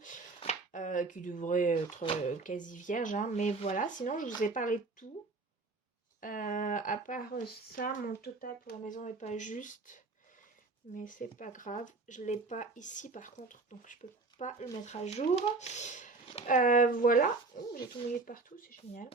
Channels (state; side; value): quieter; left; 3.7 dB